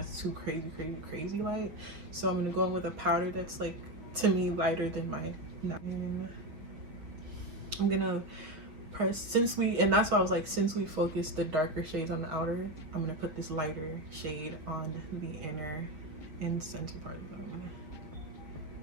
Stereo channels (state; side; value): late; left; 6.6 ms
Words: too crazy light. So I'm gonna go in with a powder that's like, to me, lighter than my, and I'm gonna press, and that's why I was like, since we focused the darker shades on the outer, I'm gonna put this lighter shade on the inner and center part of it. I'm gonna